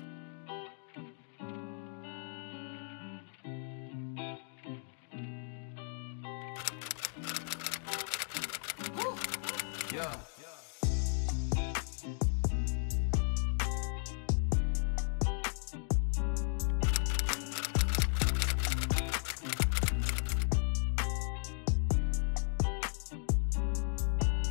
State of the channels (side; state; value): right; silent; 54 dB below the other